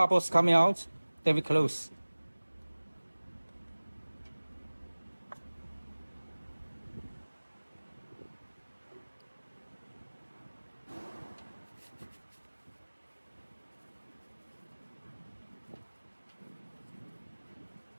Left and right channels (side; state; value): both; inverted; correlation -1.00